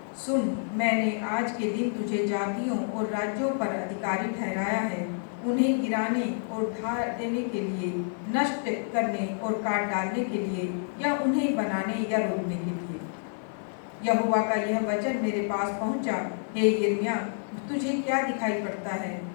सुन, मैंने आज के दिन तुझे जातियों और राज्यों पर अधिकारी ठहराया है, उन्हें गिराने और ढा देने के लिए, नष्ट करने और काट डालने के लिए, या उन्हें बनाने या रोकने के लिए। यहोवा का यह वचन मेरे पास पहुंचा, हे यिर्मयाह, तुझे क्या दिखाई पड़ता है?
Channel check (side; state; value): right; silent; digital silence